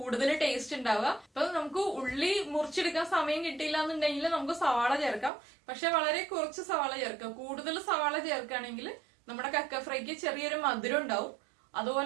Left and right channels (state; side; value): drops out; left; at 5.3 s